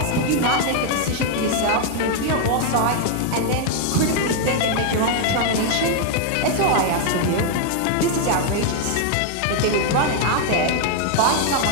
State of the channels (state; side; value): different; both; correlation 0.00